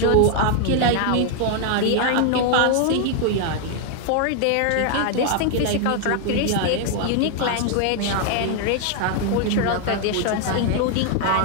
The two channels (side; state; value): both; different; correlation 0.00